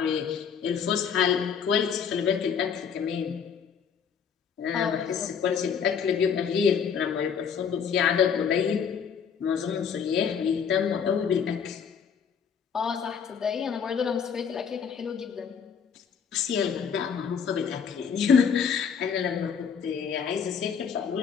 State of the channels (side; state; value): right; quieter; 7.0 dB